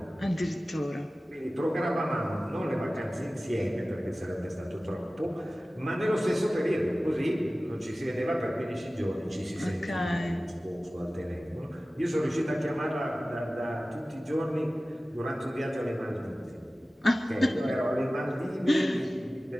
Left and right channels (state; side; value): normal; both; correlation 0.97